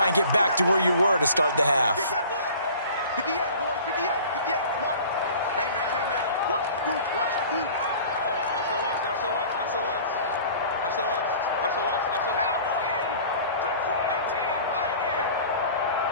and get back to where you were to start the half. 58, boys, 58, 58, come on. Hey, man, watch the boot, watch the boot. SOS.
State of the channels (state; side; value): inverted; both; correlation -0.45